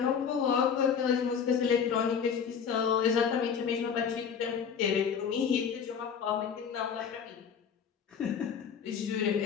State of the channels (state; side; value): quieter; right; 7.1 dB